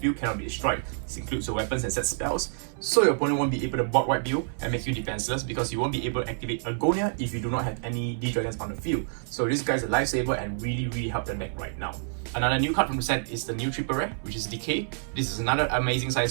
cannot be destroyed. This includes your weapons and set spells, so your opponent won't be able to board wipe you and make you defenseless because you won't be able to activate Agonia if you do not have any D-Dragons on the field. So this guy's a lifesaver and really help the deck right now. Another new card from the set is the new triple rare, which is Decay. This is another amazing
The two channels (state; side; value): silent; left; 60 dB below the other